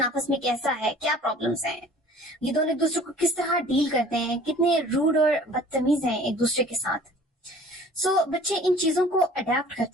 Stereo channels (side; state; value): both; normal; correlation 0.48